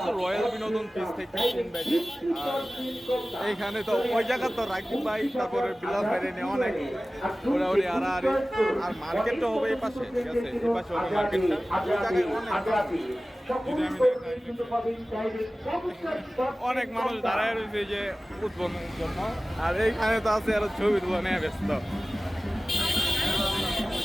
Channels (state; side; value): normal; both; correlation 0.97